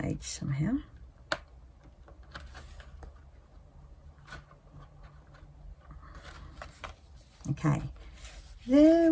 somehow. Okay, there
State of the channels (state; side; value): identical; both; correlation 1.00